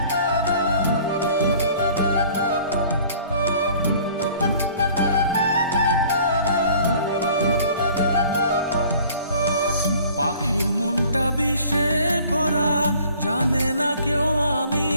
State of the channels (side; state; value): both; inverted; correlation -0.52